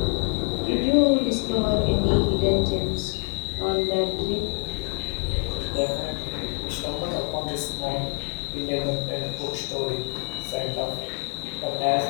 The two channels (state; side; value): quieter; right; 36.5 dB